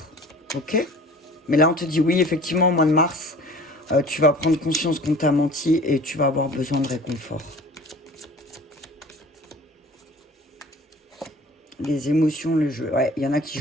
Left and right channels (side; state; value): both; normal; correlation 0.45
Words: Ok? Mais là, on te dit oui, effectivement, au mois de mars, tu vas prendre conscience qu'on t'a menti et tu vas avoir besoin de réconfort. Les émotions, le jeu. Ouais, il y en a qui